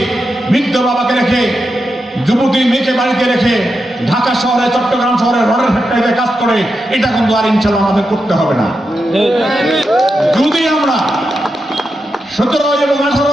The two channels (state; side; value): normal; both; correlation 0.87